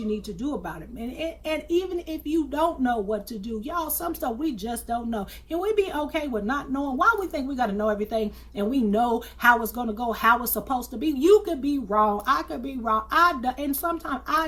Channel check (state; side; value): identical; both; correlation 1.00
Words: need to do about it. And even if you don't know what to do, y'all, some stuff we just don't know. Can we be okay with not knowing? Why we think we got to know everything and we know how it's going to go, how it's supposed to be? You could be wrong. I could be wrong. And sometimes I